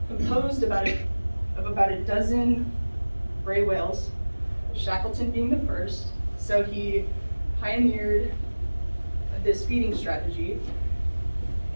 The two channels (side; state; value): both; inverted; correlation -1.00